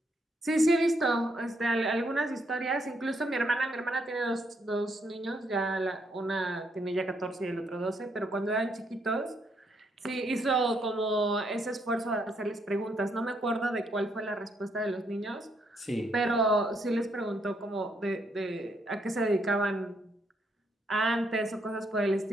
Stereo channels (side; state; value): both; normal; correlation 0.74